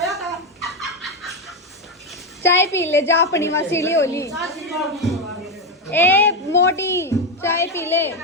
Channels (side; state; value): both; normal; correlation 0.10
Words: था चाय पी ले जा अपनी मसीली होली ए मोटी चाय पी ले